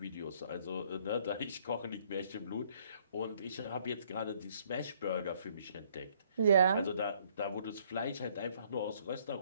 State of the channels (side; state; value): both; inverted; correlation -0.64